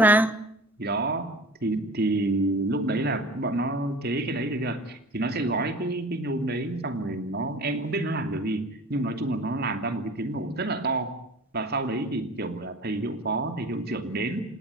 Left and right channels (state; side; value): normal; both; correlation 0.40